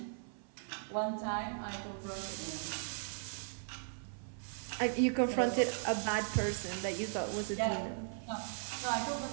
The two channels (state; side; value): silent; left; 53 dB below the other